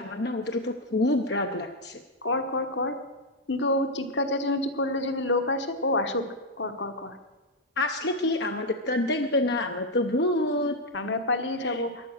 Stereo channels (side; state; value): both; normal; correlation 0.01